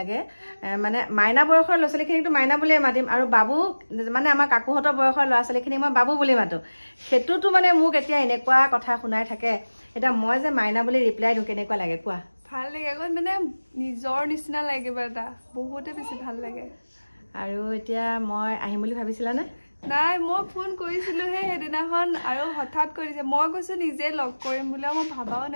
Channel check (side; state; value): both; inverted; correlation -1.00